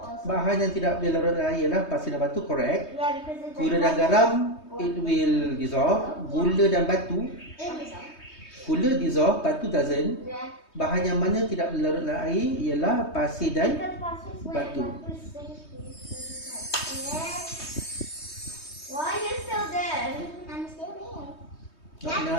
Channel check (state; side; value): late; right; 3.2 ms